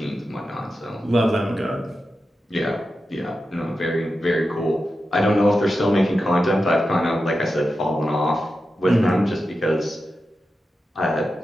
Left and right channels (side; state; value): both; normal; correlation 0.91